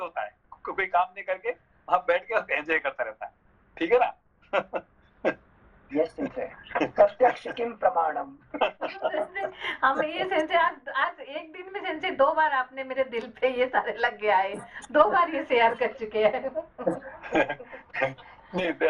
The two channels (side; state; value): both; identical; correlation 1.00